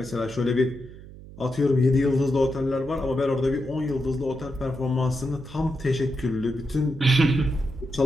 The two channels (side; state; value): right; noise; hum, 17 dB below the sound